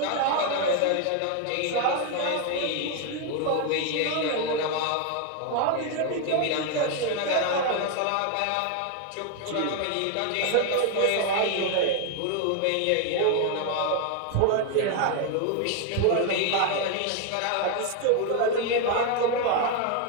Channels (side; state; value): both; different; correlation 0.01